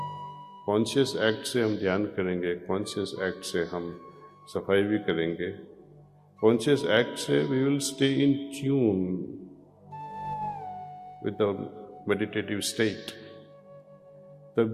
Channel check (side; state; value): both; identical; correlation 1.00